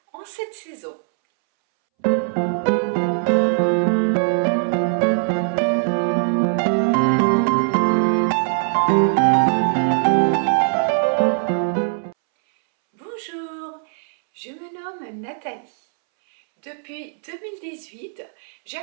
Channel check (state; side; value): silent; left; 65 dB below the other